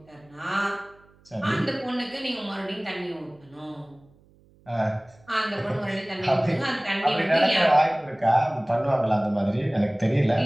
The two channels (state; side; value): noise; right; hum, 30 dB below the sound